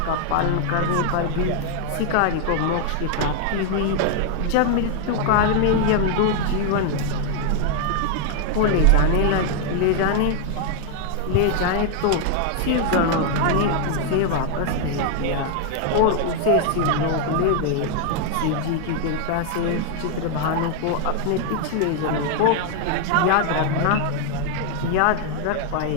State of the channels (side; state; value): both; different; correlation 0.00